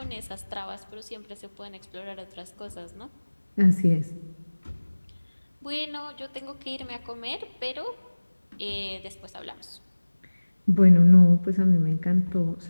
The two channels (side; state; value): both; inverted; correlation -1.00